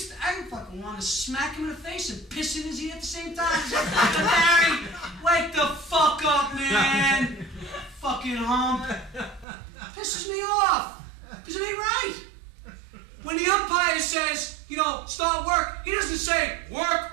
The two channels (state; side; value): drops out; left; at 9.5 s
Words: I fucking want to smack him in the face and piss in his ear at the same time. It's like, fucking Barry, wake the fuck up, man. Fucking hump. Pisses me off. Because it ain't right. When the umpire says, you know, start work, he doesn't say, work